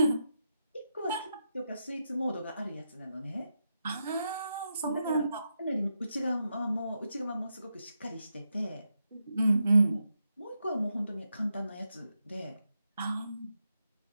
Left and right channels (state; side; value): inverted; both; correlation -0.85